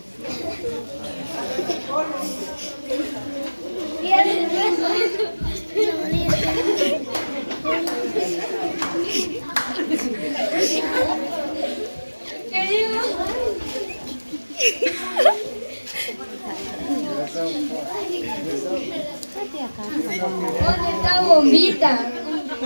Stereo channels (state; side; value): inverted; both; correlation -1.00